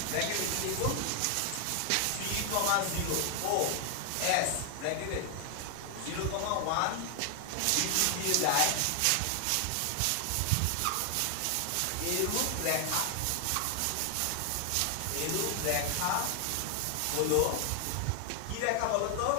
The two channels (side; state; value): both; different; correlation 0.00